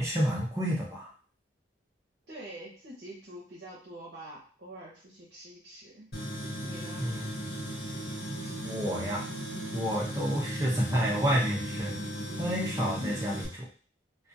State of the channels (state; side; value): normal; both; correlation 0.70